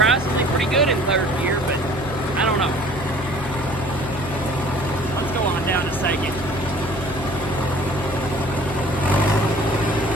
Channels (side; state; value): left; noise; hum, 10 dB below the sound